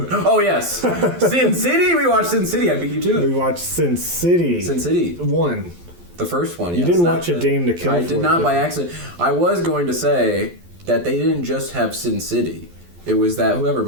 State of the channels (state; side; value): late; left; 12 ms